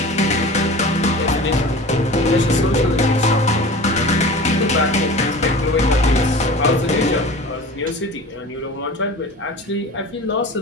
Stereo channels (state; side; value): normal; both; correlation 0.37